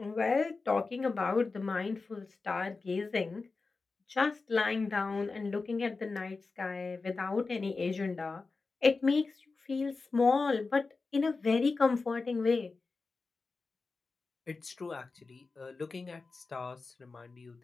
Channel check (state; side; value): quieter; right; 4.0 dB